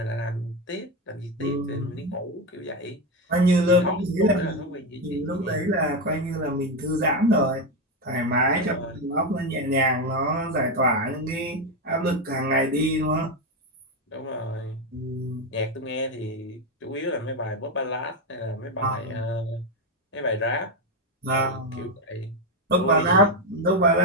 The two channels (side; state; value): both; normal; correlation 0.10